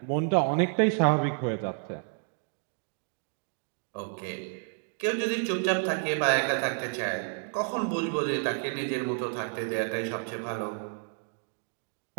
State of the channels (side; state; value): left; silent; 57 dB below the other